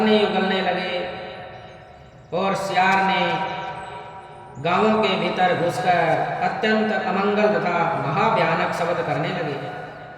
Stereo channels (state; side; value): identical; both; correlation 1.00